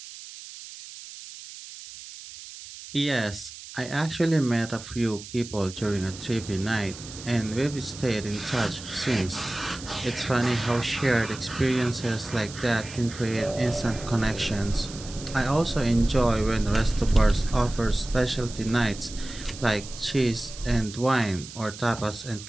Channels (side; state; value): right; noise; hiss, 14 dB below the sound